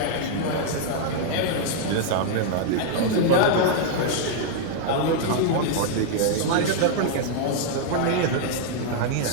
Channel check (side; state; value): both; different; correlation 0.00